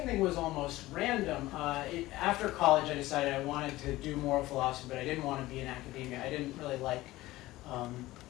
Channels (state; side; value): quieter; right; 17.6 dB